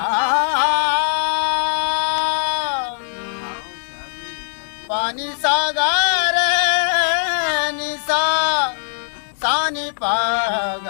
पानी सागर निसा सानी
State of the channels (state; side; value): silent; right; 64 dB below the other